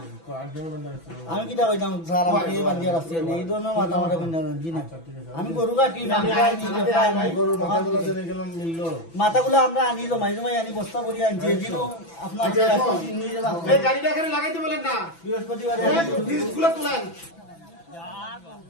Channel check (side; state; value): right; late; 6.0 ms